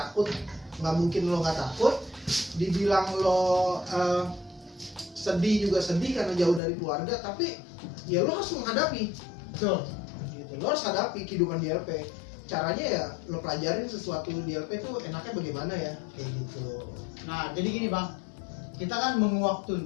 nggak mungkin lo nggak takut. Dibilang lo sedih juga sedih karena jauh dari keluarga, tapi ya lo harus menghadapi. Betul. Gitu. Lo harus hadapi kehidupan di LP. Caranya ya lo pelajarin sesuatu di LP tuh enaknya bagaimana ya, kayak gitu. Nah, jadi gini Bang, kita kan menguak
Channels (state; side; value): drops out; right; at 6.6 s